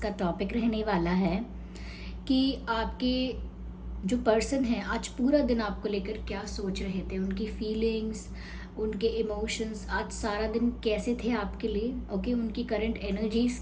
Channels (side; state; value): both; identical; correlation 1.00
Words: टॉपिक रहने वाला है कि आपके जो पर्सन हैं आज पूरा दिन आपको लेकर क्या सोच रहे थे, उनकी फीलिंग्स, उनके इमोशंस आज सारा दिन कैसे थे आपके लिए। ओके, उनकी करंट एनर्जीज